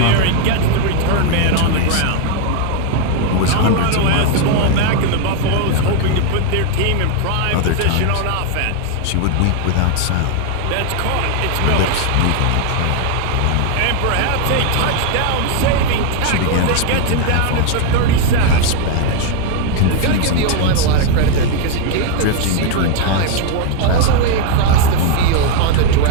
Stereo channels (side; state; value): both; different; correlation 0.00